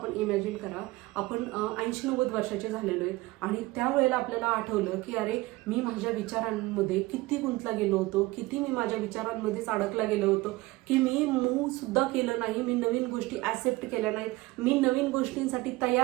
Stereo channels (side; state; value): left; quieter; 20.6 dB